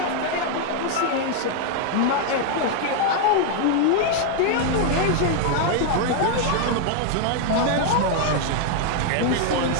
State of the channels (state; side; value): different; both; correlation 0.00